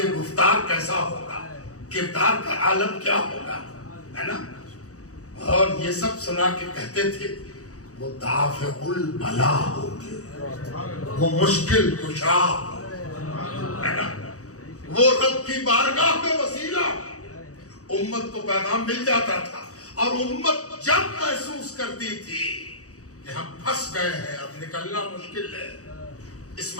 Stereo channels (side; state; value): right; late; 0.66 ms